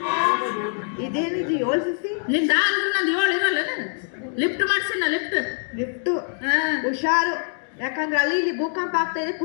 ಇದೇನಿದು 7 ಸಿಸಿ ನಿಂದ ನಂದು 7 ಇರಲ್ಲ ಲಿಫ್ಟ್ ಮಾಡ್ಸಿನ ಲಿಫ್ಟ್ ಲಿಫ್ಟು ಹುಷಾರು ಯಾಕಂದ್ರೆ ಅಲ್ಲಿ ಇಲ್ಲಿ ಭೂಕಂಪ ಆಗ್ತಾ ಇದೆ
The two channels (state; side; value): silent; right; 58 dB below the other